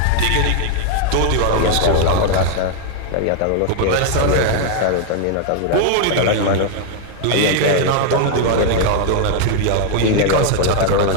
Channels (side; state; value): both; different; correlation 0.00